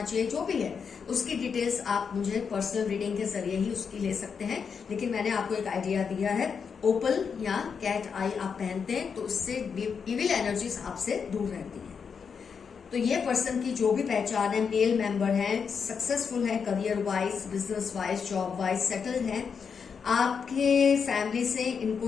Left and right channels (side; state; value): right; quieter; 6.2 dB